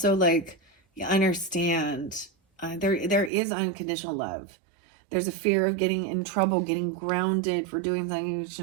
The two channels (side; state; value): left; drops out; at 3.3 s